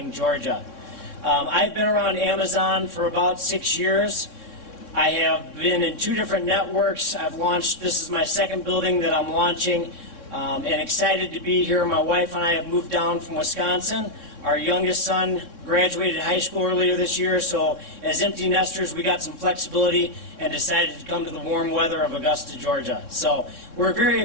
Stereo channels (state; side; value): late; right; 3.6 ms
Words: Georgia. I've been around Amazon for about 6 years. I have been in 2 different networks. I've launched, this is my 2nd building that I'm launching, and excited to be here. My wife and I have moved down from Wisconsin. Our youngest son graduated high school earlier this year, so as empty nesters, we got some flexibility and decided to come to the warm weather of Augusta, Georgia. So we're very